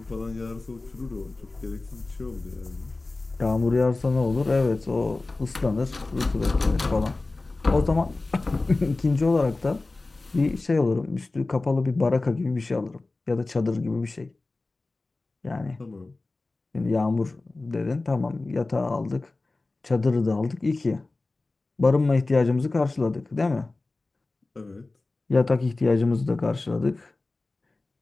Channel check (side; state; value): right; quieter; 3.3 dB